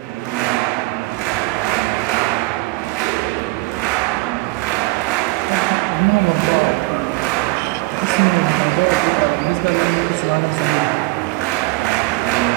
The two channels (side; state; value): left; quieter; 22.5 dB